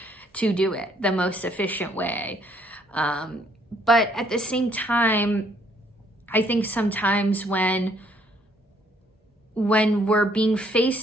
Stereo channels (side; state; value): both; normal; correlation 0.66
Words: to do it, the most efficient way. But at the same time, I think sometimes when we're being